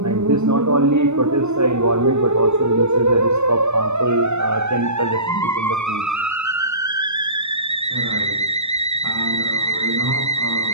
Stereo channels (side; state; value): left; late; 0.82 ms